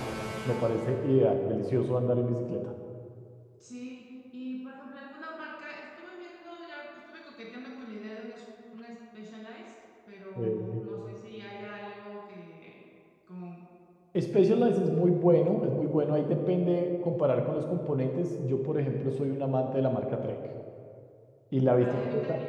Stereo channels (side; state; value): both; identical; correlation 1.00